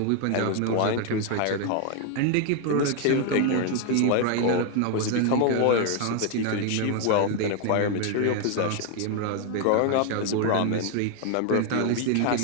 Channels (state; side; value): different; both; correlation 0.01